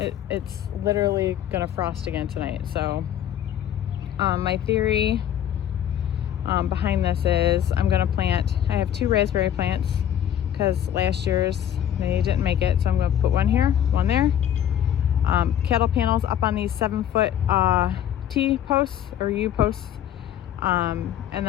it's literally gonna frost again tonight. So my theory behind this is I have 2 raspberry plants, because last year's they didn't make it, so I'm gonna put one here, one there. Cattle panels up on these 7-foot T posts or U posts, and then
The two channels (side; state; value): right; quieter; 10.3 dB